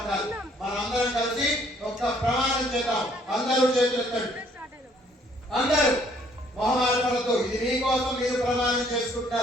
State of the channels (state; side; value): normal; both; correlation 0.63